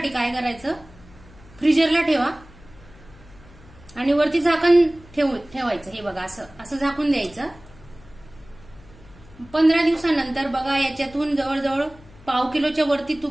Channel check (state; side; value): noise; left; hum, 23 dB below the sound